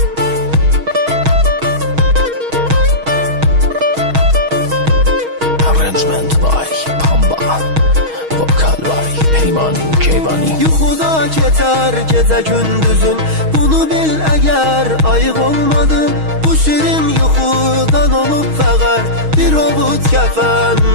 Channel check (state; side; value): late; left; 6.3 ms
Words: yuxuda keçər gecə gündüzün, bunu bil əgər ayıq olmadın. Bu şirin yuxudan olub fəqər bir ovud kəfən,